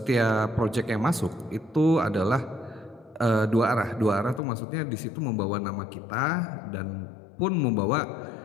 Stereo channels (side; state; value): right; drops out; at 4.4 s